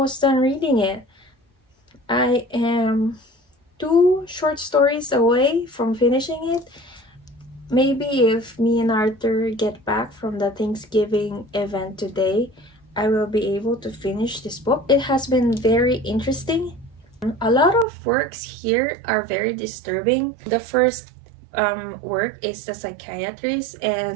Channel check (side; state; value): left; drops out; at 17.9 s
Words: done reading it. I am 2 short stories away from finishing it. Maybe if me and Arthur get back from the Thanksgiving event today, I will be able to finish this book. It has been very interesting. A lot of works here are very disturbing. The first work is The Psychiatrist,